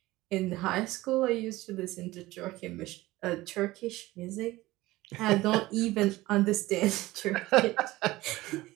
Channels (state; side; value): quieter; left; 18.3 dB